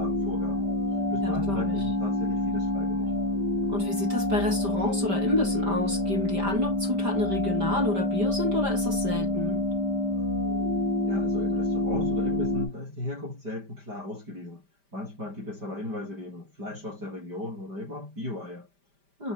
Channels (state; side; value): late; left; 5.1 ms